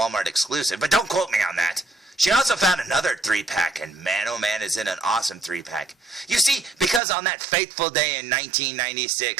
exclusive, but don't quote me on that, she also found another 3-pack, and man, oh man, is it an awesome 3-pack. You see, because on that fateful day in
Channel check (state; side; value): drops out; left; at 7.0 s